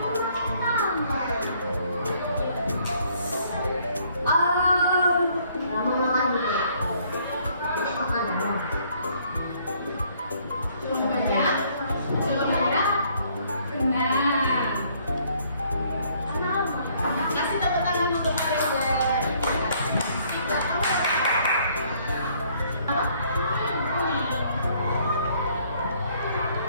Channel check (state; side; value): inverted; both; correlation -0.64